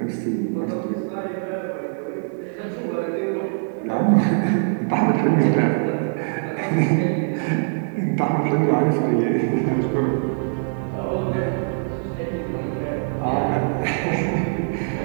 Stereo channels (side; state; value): left; silent; digital silence